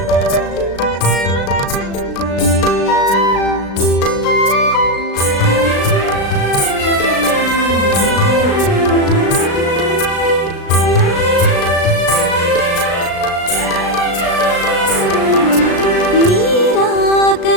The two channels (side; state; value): right; late; 36 ms